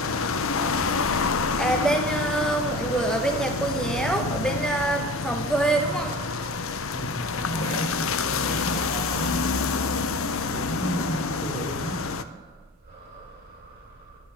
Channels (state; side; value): normal; both; correlation 0.37